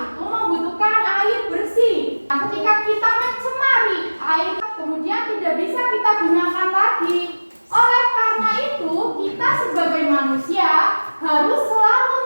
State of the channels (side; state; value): both; inverted; correlation -1.00